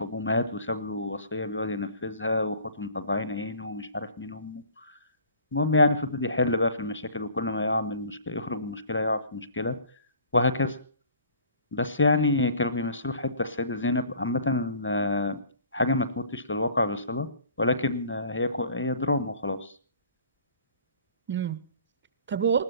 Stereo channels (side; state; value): both; inverted; correlation -0.48